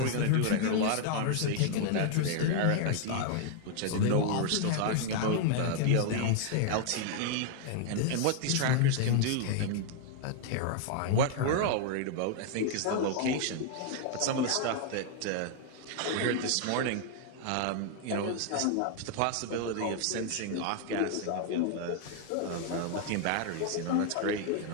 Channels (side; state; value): both; different; correlation 0.00